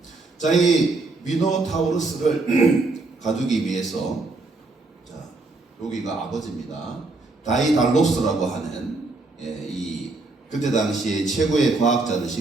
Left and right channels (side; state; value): left; quieter; 3.3 dB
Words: 자, 이 미노타우루스를 가두기 위해서, 자, 여기가 아버지입니다. 다이달로스라고 하는 이 그때 당시에 최고의 과학자를